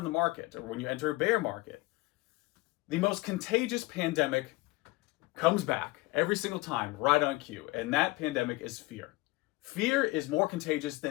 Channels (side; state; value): right; quieter; 21.6 dB